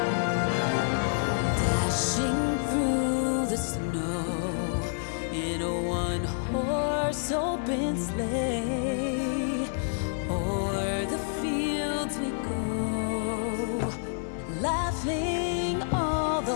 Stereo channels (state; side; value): silent; right; digital silence